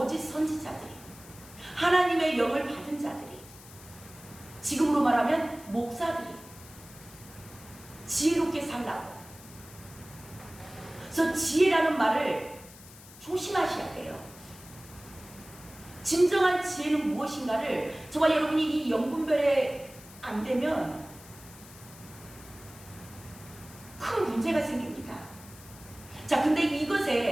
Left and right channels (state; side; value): noise; left; hiss, 19 dB below the sound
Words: 선지자들이, 하나님의 영을 받은 자들이, 지금으로 말하면 목사들이 지혜롭게 살라고. 그래서 지혜라는 말을 조심하셔야 돼요. 진정한 지혜는 무엇인가를 저와 여러분이 이 영분별에 안 되면 큰 문제가 생깁니다. 자, 근데